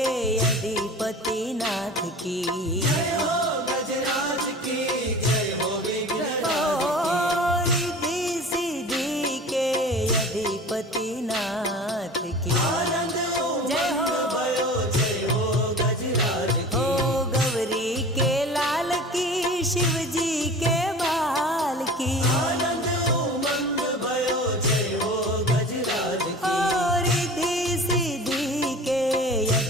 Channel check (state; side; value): normal; both; correlation 0.39